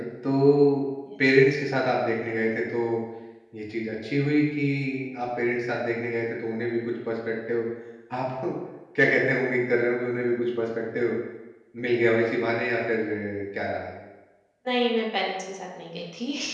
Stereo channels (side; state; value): both; identical; correlation 1.00